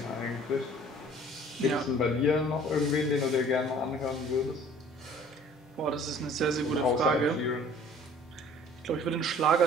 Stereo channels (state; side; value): normal; both; correlation 0.51